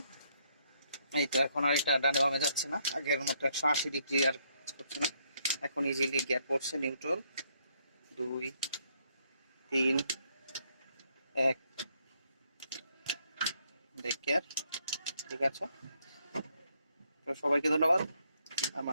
এই তো এখন আর এটা ডানে বামে যাচ্ছে না, আগের মতো 180 ডিগ্রি আর কাজ করছে না। এখন ইজিলি গিয়ার পড়ছে নিউট্রাল, 2 3 1 ব্রেক গিয়ার। ঠিক আছে, তো সবাইকে ধন্যবাদ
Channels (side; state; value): both; inverted; correlation -0.72